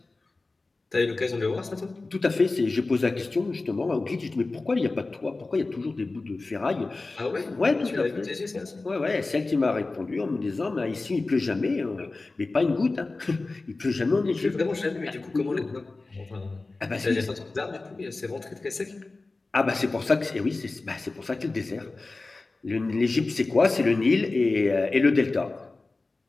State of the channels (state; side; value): quieter; right; 3.4 dB